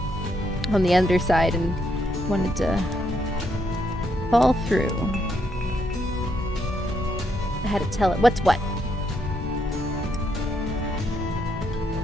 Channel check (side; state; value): both; normal; correlation 0.76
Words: on the underside, and wanted to fall through. I had to tell it what's what.